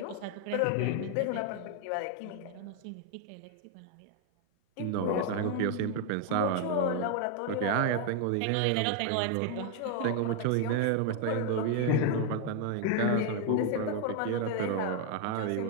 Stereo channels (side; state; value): both; different; correlation 0.00